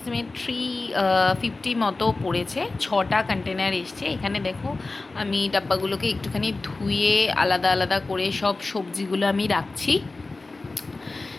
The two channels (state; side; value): quieter; right; 3.4 dB